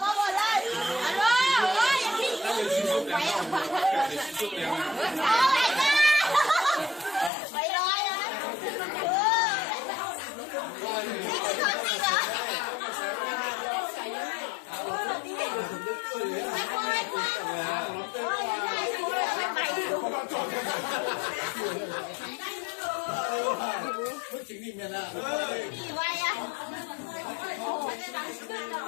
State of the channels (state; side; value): drops out; right; at 7.3 s